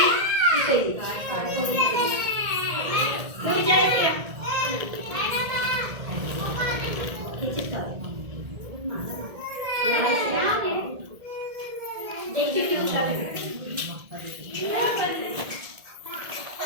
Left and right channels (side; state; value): left; late; 1.8 ms